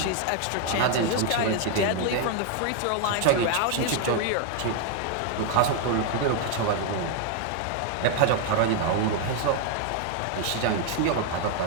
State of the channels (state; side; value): different; both; correlation 0.00